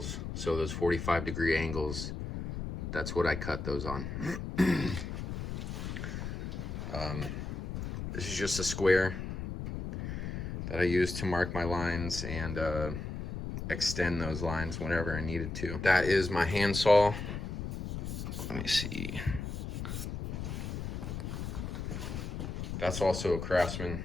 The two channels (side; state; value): left; noise; rumble, 5 dB below the sound